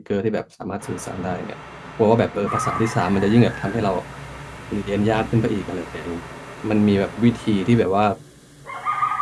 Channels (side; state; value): both; identical; correlation 1.00